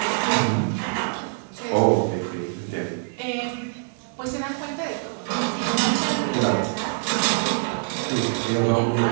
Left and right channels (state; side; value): silent; left; digital silence